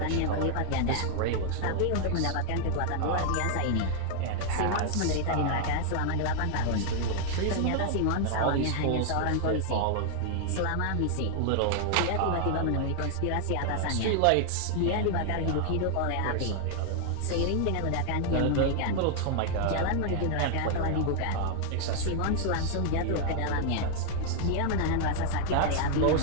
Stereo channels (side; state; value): both; different; correlation 0.00